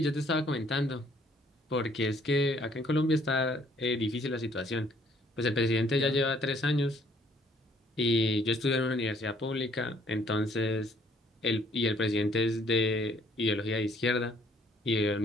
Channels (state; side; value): normal; both; correlation 0.63